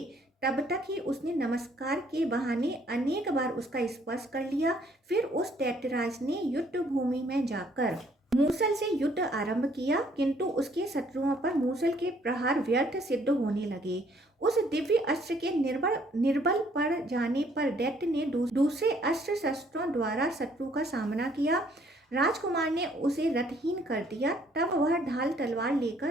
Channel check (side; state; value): both; normal; correlation 0.64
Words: तब तक ही उसने नमस्कार के बहाने अनेक बार उसका स्पर्श कर लिया। फिर उस दैत्यराज ने युद्ध भूमि में जाकर मूसल से युद्ध आरंभ किया, किंतु उसके शत्रुओं पर मूसल के प्रहार व्यर्थ सिद्ध होने लगे। उस दिव्य अस्त्र के निर्बल पड़ जाने पर दैत्य ने दूसरे अस्त्र शस्त्रों द्वारा शत्रु का सामना किया। राजकुमार ने उसे रथहीन कर दिया। तब वह ढाल तलवार